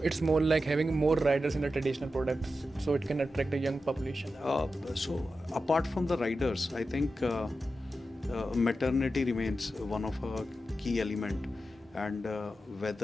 It's more like having more riders in the traditional products so it can attract a young population. So apart from the riders, I think maternity remains one of a key element, and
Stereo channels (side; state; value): both; normal; correlation 0.91